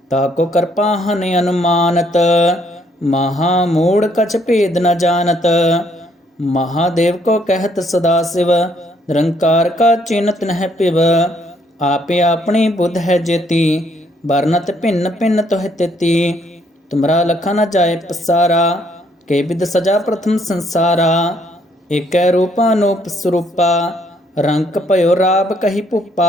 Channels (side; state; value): both; normal; correlation 0.68